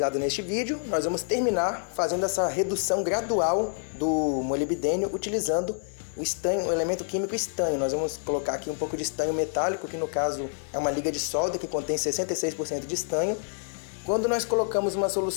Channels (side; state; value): right; silent; digital silence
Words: neste vídeo, nós vamos terminar fazendo essa redução gradual do molibdênio utilizando o estanho, o elemento químico estanho. Nós vamos colocar aqui um pouco de estanho metálico, que no caso é uma liga de solda que contém 66% de estanho. Quando nós colocamos uma